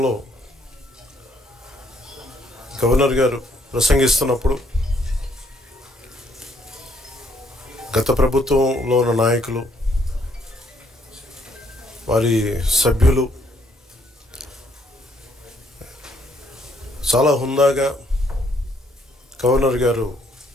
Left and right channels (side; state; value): both; normal; correlation 0.69